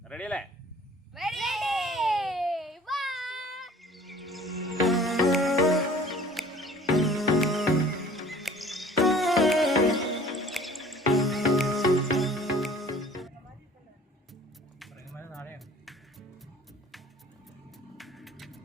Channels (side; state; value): both; normal; correlation 0.49